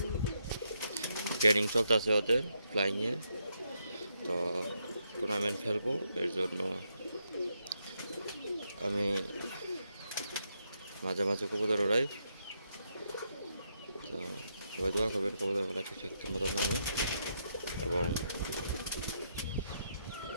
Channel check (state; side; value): inverted; both; correlation -0.79